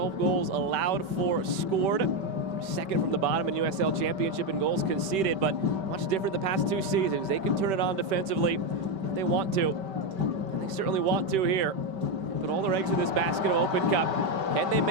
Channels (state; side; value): late; left; 5.2 ms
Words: goals allowed for scored. Second from the bottom in USL Championship in goals conceded, but much different the past 2 seasons. They can turn it on defensively if they want to, and they certainly want to here. They put all their eggs in this basket of Open Cup. Can they